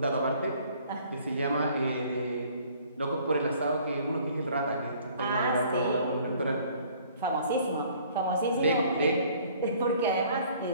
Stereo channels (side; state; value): both; inverted; correlation -0.56